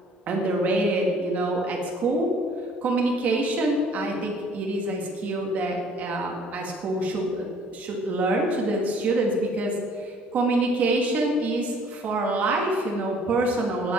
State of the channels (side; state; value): both; normal; correlation 0.56